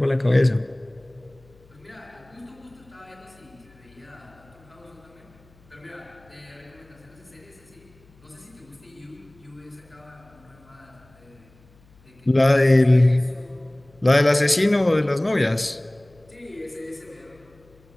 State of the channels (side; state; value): left; noise; hum, 29 dB below the sound